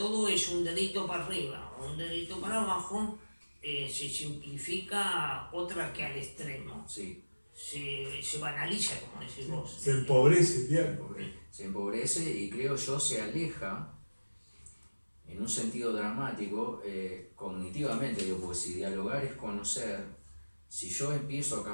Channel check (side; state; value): both; inverted; correlation -1.00